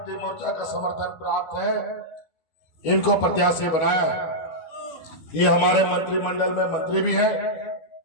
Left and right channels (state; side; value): late; right; 12 ms